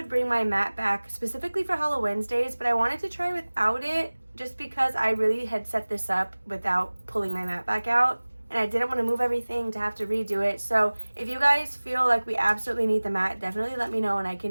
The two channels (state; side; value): inverted; both; correlation -1.00